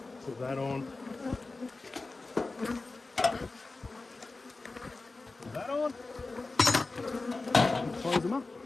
Put that on. Put that on. And close them up.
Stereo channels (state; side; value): quieter; right; 3.5 dB